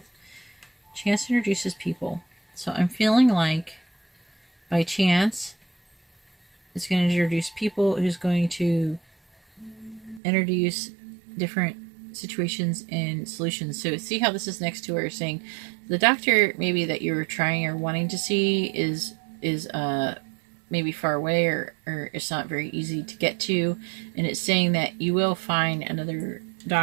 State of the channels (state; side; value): drops out; left; at 10.2 s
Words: Chance introduces people. So I'm feeling like by chance it's going to introduce people who's going to introduce different situations and solutions. So see how this is next to where saying the doctor maybe that you're trying or wanting to see is maybe far away, or it's not very easy to get to, and it's saying that you will find another